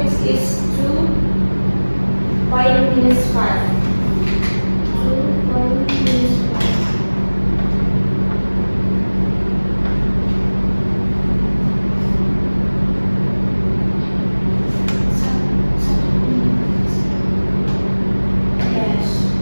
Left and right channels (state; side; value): inverted; both; correlation -1.00